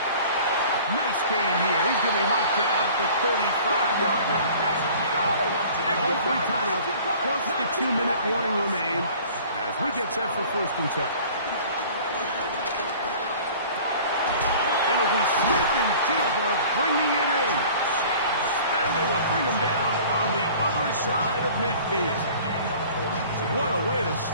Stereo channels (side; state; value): both; inverted; correlation -0.47